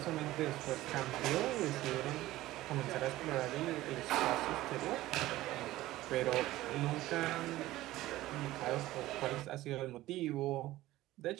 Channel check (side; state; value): left; quieter; 16.4 dB